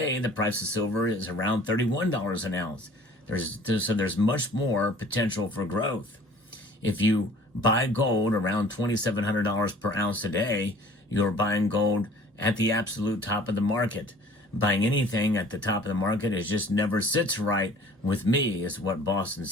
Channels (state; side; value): normal; both; correlation 0.50